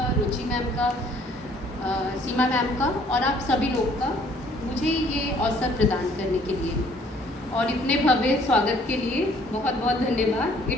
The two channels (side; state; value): both; normal; correlation 0.60